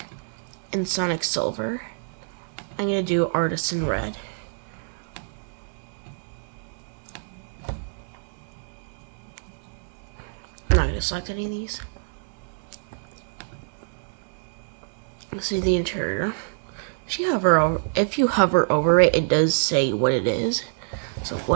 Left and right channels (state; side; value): silent; left; digital silence